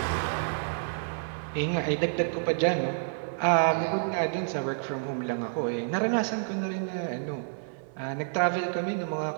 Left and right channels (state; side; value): silent; left; digital silence